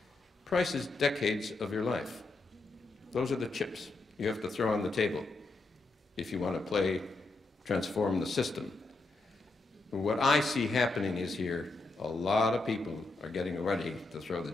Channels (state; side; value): quieter; right; 3.2 dB